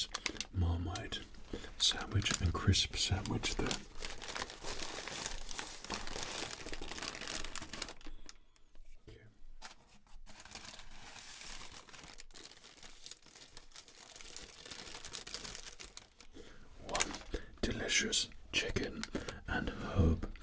Marmite sandwich and crisp sandwich there. One delicious chicken and herb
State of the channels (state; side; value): identical; both; correlation 1.00